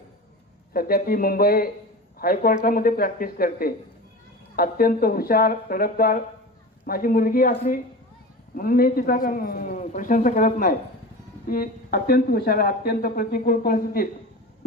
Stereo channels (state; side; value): normal; both; correlation 0.31